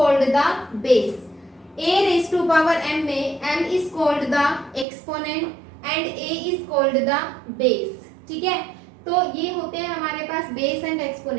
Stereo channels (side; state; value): left; drops out; at 4.9 s